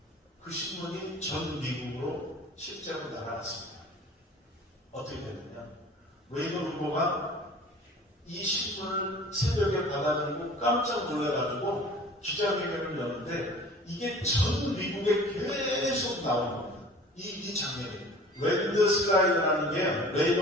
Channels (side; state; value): both; normal; correlation 0.45